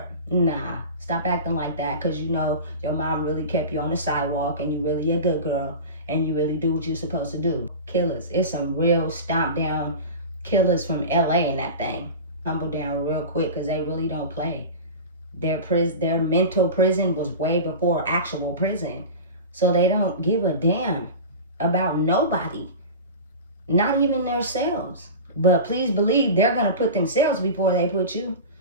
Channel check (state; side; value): inverted; both; correlation -0.31